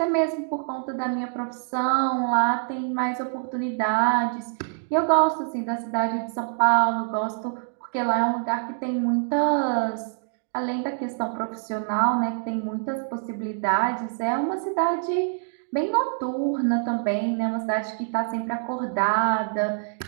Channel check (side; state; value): left; silent; 61 dB below the other